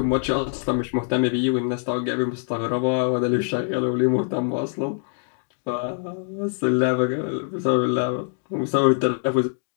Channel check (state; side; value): silent; right; 58 dB below the other